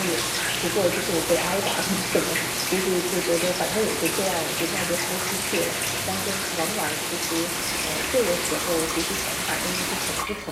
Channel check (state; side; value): identical; both; correlation 1.00